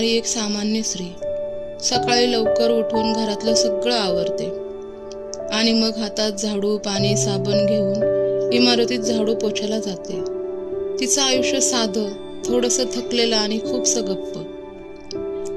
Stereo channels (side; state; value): both; identical; correlation 1.00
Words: एक सामान्य स्त्री, सकाळी लवकर उठून घरातलं सगळं आवरते आणि मग हातात झाडू, पाणी, साबण घेऊन इमारतीत झाडू पोछायला जाते. तिचं आयुष्य साधं, थोडंसं थकलेलं आणि खूपसं गप्प.